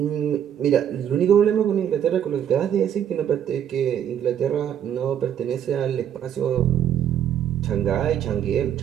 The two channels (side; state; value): left; quieter; 9.6 dB